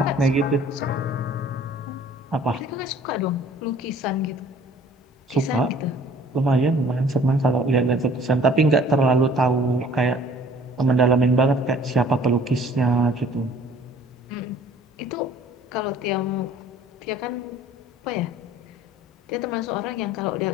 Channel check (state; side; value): normal; both; correlation 0.52